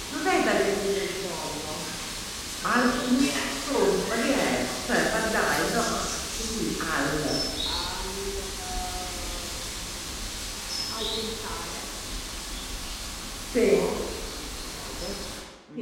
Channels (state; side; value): identical; both; correlation 1.00